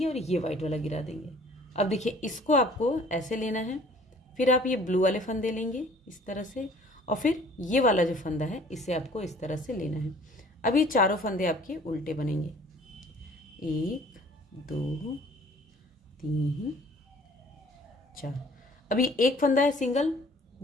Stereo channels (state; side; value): normal; both; correlation 0.53